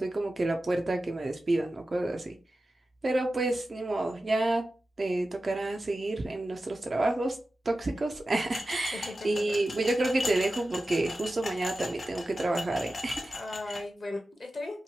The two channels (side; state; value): both; normal; correlation 0.94